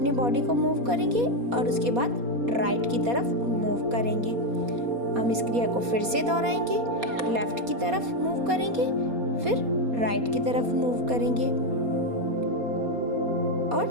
बॉडी को मूव करेंगे और उसके बाद राइट की तरफ मूव करेंगे। हम इस क्रिया को फिर से दोहराएंगे। लेफ्ट की तरफ मूव करेंगे, फिर राइट की तरफ मूव करेंगे और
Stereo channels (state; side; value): late; left; 4.2 ms